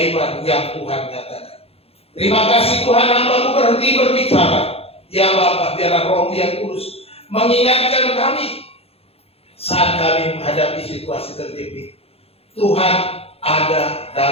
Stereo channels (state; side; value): late; right; 0.29 ms